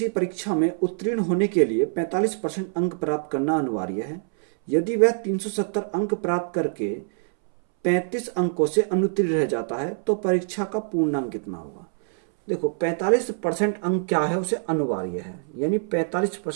परीक्षा में उत्तीर्ण होने के लिए 45% अंक प्राप्त करना अनिवार्य है। यदि वह 370 अंक प्राप्त करके 35 अंकों से अनुत्तीर्ण रह जाता है तो परीक्षा का पूर्णांक कितना होगा। देखो 45% अंक क्या है, उसे अनिवार्य है, यानी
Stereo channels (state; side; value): silent; left; 62 dB below the other